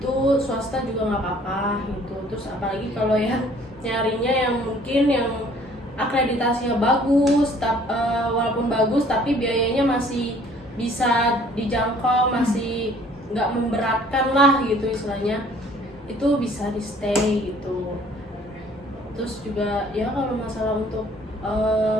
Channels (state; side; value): normal; both; correlation 0.56